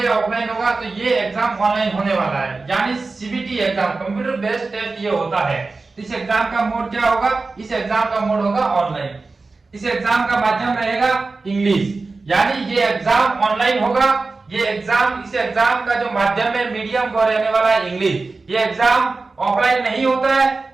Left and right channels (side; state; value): left; quieter; 3.8 dB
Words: ऑफलाइन होगा? तो ये एग्जाम ऑनलाइन होने वाला है, यानी CBT exam, computer based test ये होता है। इस एग्जाम का मोड क्या होगा? इस एग्जाम का मोड होगा ऑनलाइन। इस एग्जाम का माध्यम रहेगा इंग्लिश, यानी ये एग्जाम ऑनलाइन होगा। इस एग्जाम का जो माध्यम है, मीडियम वो रहने वाला है इंग्लिश। ये एग्जाम ऑफलाइन नहीं होता है।